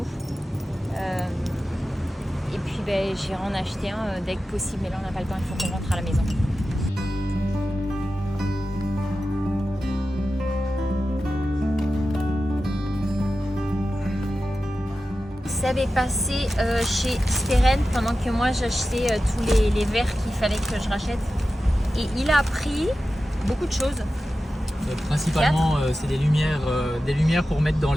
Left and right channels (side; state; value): both; normal; correlation 0.93